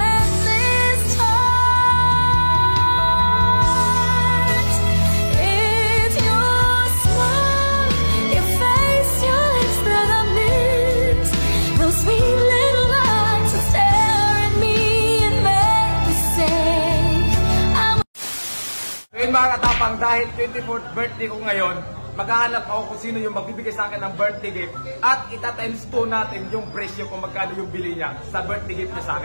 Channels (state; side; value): inverted; both; correlation -1.00